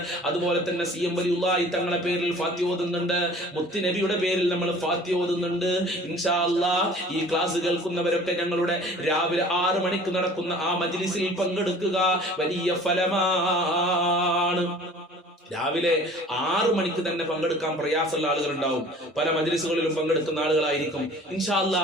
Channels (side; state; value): both; normal; correlation 0.47